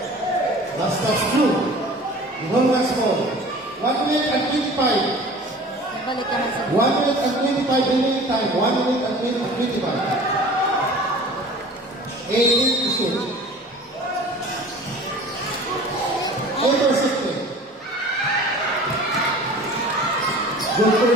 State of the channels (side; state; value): both; normal; correlation 0.43